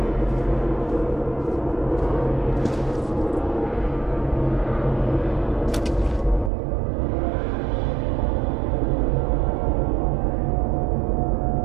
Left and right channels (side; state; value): left; drops out; at 6.5 s